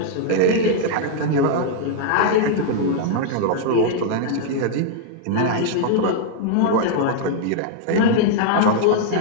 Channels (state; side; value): different; both; correlation -0.01